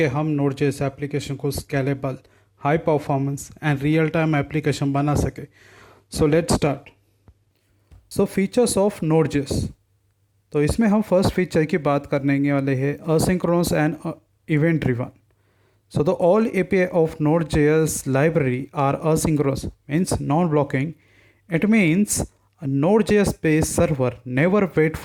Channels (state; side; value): identical; both; correlation 1.00